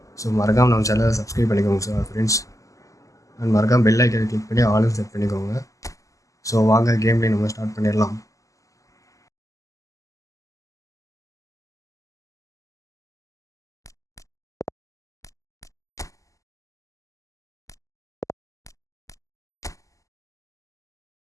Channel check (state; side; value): late; right; 0.16 ms